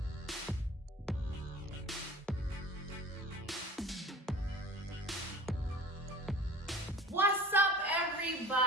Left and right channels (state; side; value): normal; both; correlation 0.41